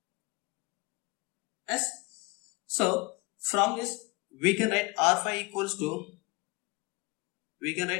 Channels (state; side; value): quieter; right; 26.8 dB